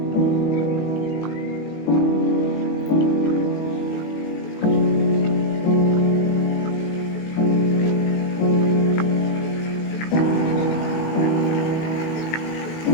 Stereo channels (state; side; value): late; right; 18 ms